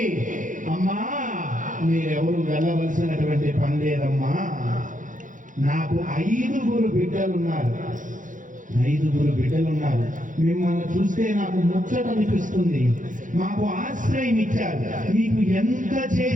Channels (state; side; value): late; left; 0.38 ms